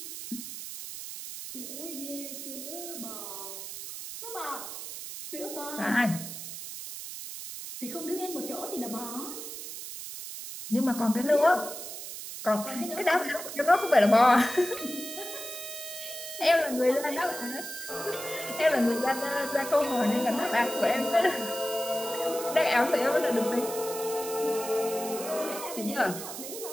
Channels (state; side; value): noise; right; hiss, 9 dB below the sound